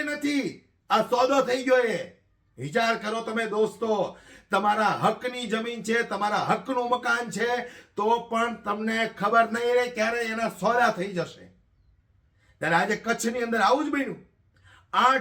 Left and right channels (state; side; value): identical; both; correlation 1.00